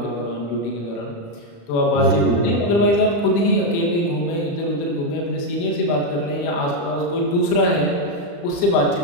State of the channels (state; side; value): late; right; 35 ms